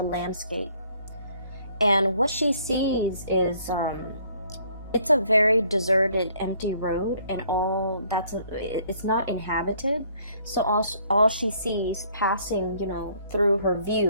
landscape, and what she sees is it's a very deserted, empty road, and it's not inhabited. So all she sees passing, through her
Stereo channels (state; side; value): inverted; both; correlation -0.63